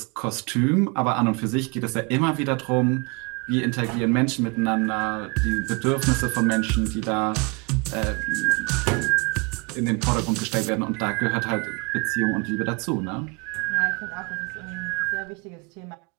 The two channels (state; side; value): quieter; left; 29.9 dB